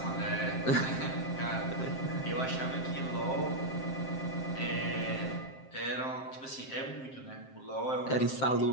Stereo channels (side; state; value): right; late; 7.6 ms